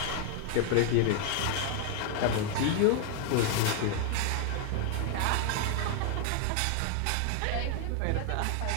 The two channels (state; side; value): different; both; correlation 0.00